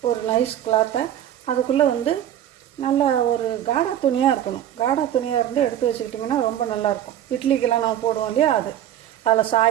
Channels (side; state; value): left; quieter; 11.3 dB